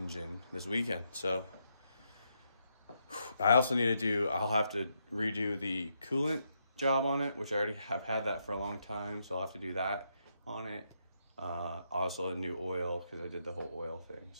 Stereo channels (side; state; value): both; inverted; correlation -0.80